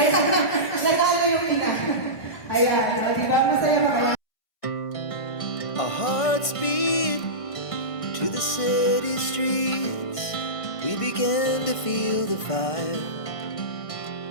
nanalo yung ina. Ayan, di ba? Masaya ba kayo? Our hearts beat to the city streets. We began to feel the fire.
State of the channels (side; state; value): right; late; 1.5 ms